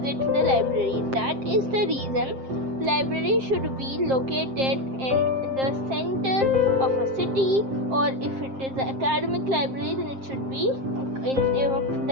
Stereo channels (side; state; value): left; late; 7.6 ms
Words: the library. That is the reason library should be located in the center of a city, or if it is an academic library, then it should be in